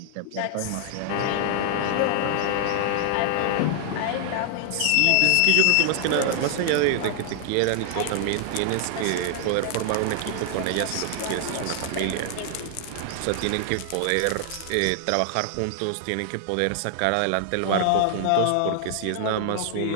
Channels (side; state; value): both; different; correlation 0.00